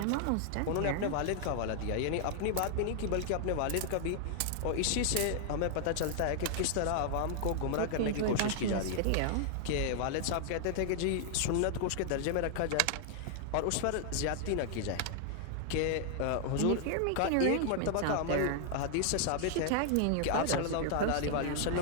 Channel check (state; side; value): different; both; correlation 0.00